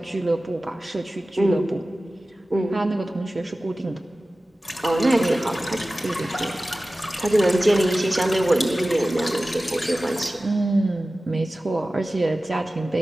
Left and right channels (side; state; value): both; normal; correlation 0.96